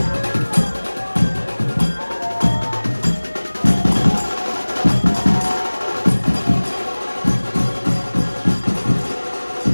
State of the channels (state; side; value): inverted; both; correlation -1.00